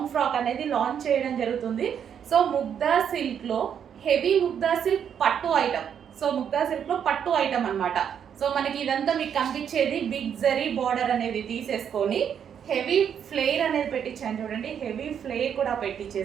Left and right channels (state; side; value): quieter; left; 8.3 dB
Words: ఫ్రాక్ అనేది లాంచ్ చేయడం జరుగుతుంది. సో ముగ్దా సిల్క్ లో హెవీ ముగ్దా సిల్క్ పట్టు ఐటమ్. సో ముగ్దా సిల్క్ లో పట్టు ఐటమ్ అన్నమాట. సో మనకి ఇదంతా మీకు కనిపించేది బిగ్ జరీ బార్డర్ అనేది తీసేసుకొని హెవీ ఫ్లేర్ అనేది పెట్టించాను చూడండి. హెవీ ఫ్లేర్ కూడా